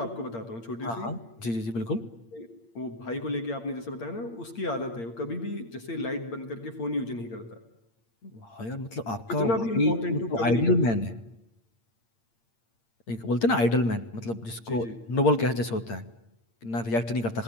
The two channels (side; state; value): right; late; 8.7 ms